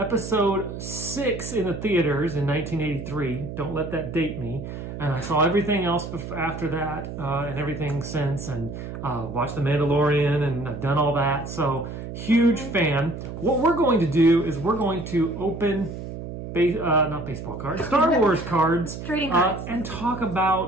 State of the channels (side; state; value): right; noise; hum, 9 dB below the sound